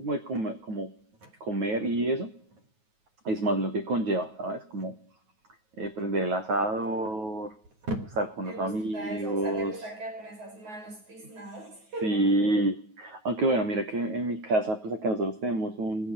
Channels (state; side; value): late; left; 9.3 ms